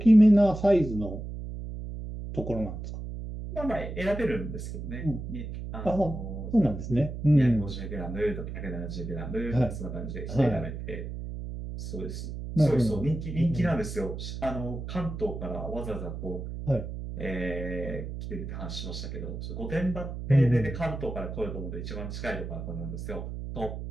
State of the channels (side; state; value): right; noise; hum, 7 dB below the sound